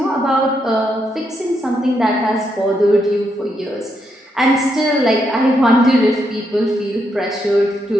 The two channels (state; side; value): normal; both; correlation 0.79